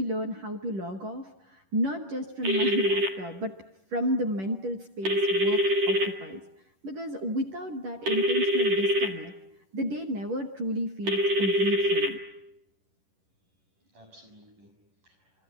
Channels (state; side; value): late; left; 10 ms